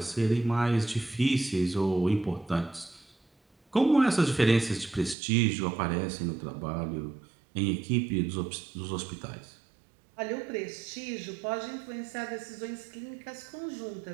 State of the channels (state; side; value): drops out; left; at 5.2 s